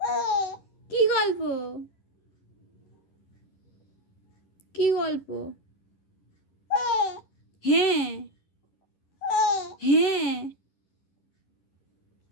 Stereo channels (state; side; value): late; right; 11 ms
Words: কি গল্প? কি গল্প? হ্যাঁ হ্যাঁ,